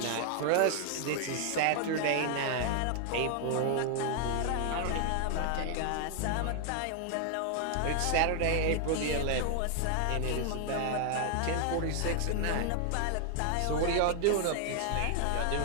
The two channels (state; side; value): different; both; correlation 0.00